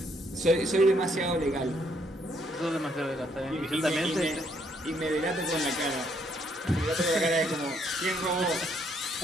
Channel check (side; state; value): both; normal; correlation 0.70